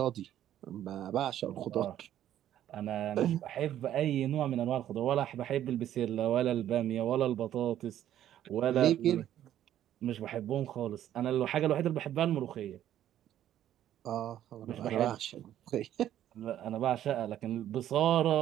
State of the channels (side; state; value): left; quieter; 11.6 dB